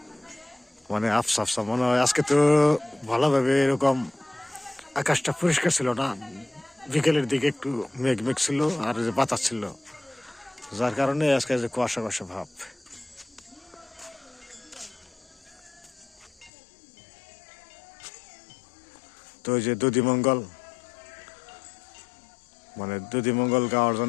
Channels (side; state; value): right; drops out; at 16.5 s